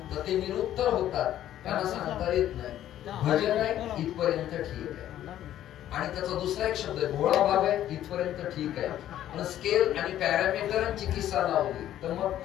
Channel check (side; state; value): right; quieter; 12.1 dB